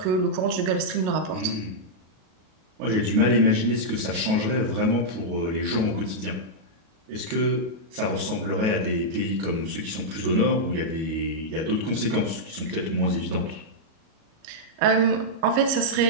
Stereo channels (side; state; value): left; late; 37 ms